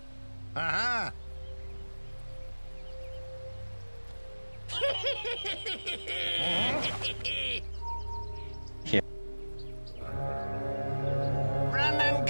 Uh-huh. Run and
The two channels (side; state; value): both; inverted; correlation -1.00